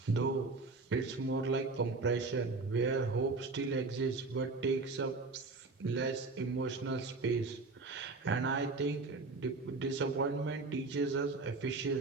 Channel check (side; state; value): left; quieter; 3.7 dB